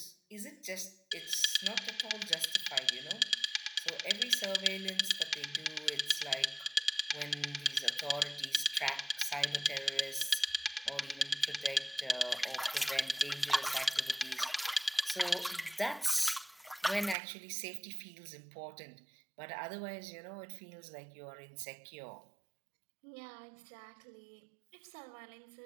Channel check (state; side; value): drops out; left; at 17.2 s